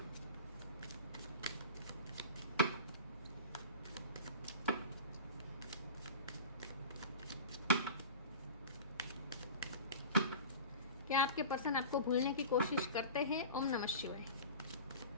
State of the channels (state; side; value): inverted; both; correlation -0.36